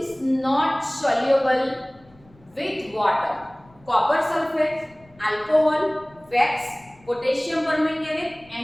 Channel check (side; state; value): left; noise; rumble, 28 dB below the sound